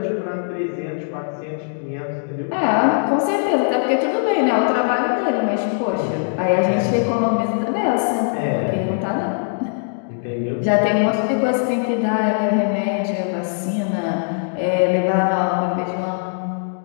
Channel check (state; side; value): silent; right; digital silence